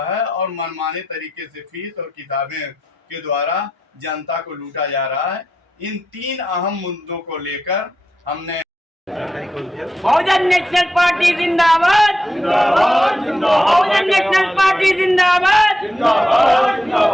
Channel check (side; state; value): both; normal; correlation 0.87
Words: है और मनमाने तरीके से फीस और किताबें के द्वारा जनता को लूटा जा रहा है। इन 3 अहम मुद्दों को लेकर हमने बहुजन नेशनल पार्टी जिंदाबाद, बहुजन नेशनल पार्टी जिंदाबाद,